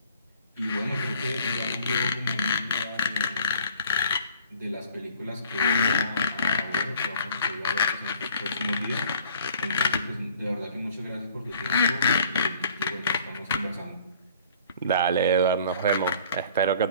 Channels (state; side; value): inverted; both; correlation -0.53